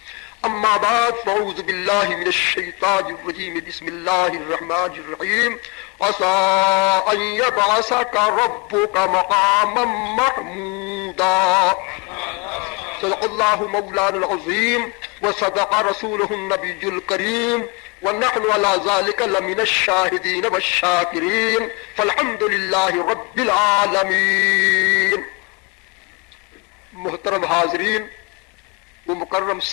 أما بعد فأعوذ بالله من الشيطان الرجيم بسم الله الرحمن الرحيم عسى أن يبعثك ربك مقاما محمودا. صدق الله مولانا العظيم وصدق رسوله النبي الكريم ونحن على ذلك لمن الشاهدين والشاكرين فالحمد لله رب العالمين. محترم حاضرین و مکرم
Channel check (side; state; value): right; quieter; 29.6 dB